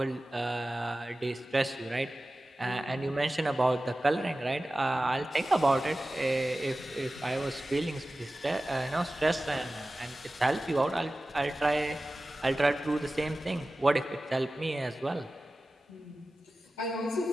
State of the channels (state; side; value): normal; both; correlation 0.96